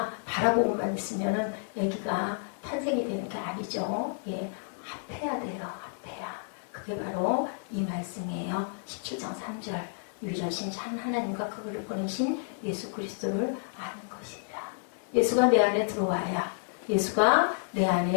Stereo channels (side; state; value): right; silent; digital silence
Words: 바라보고만 있으면은 아기가 탄생이 되는 게 아니죠. 예, 합해야 돼요. 합해야. 그게 바로 이 말씀이에요. 17장 3절. 유일하신 참 하나님과 그를 보내신 예수 그리스도를 아는 것입니다. 예수가 내 안에 들어와야 예수가 내